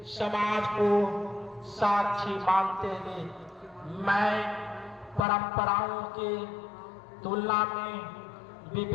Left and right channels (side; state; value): right; drops out; at 5.2 s